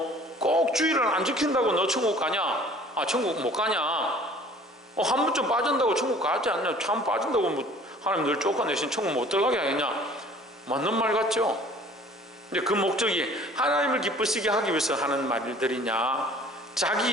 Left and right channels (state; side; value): normal; both; correlation 0.51